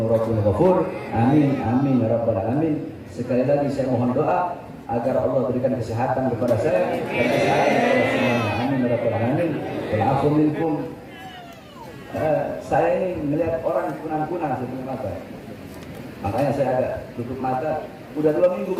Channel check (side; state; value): both; identical; correlation 1.00